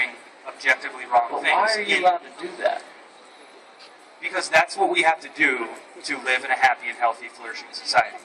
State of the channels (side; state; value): both; identical; correlation 1.00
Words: objectively wrong things. Why are you allowed to do that? Because that's what we have to do to live in a happy and healthy, flourishing society.